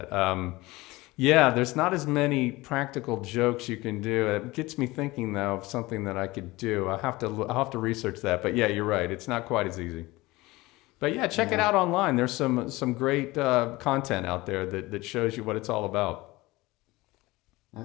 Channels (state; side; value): quieter; right; 20.5 dB